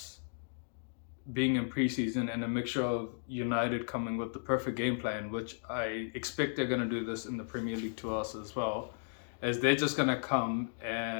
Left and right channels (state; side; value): silent; right; digital silence